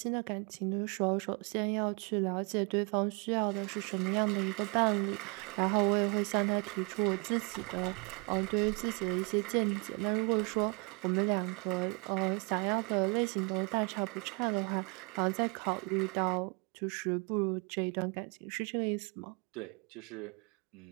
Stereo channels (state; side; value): quieter; left; 32.6 dB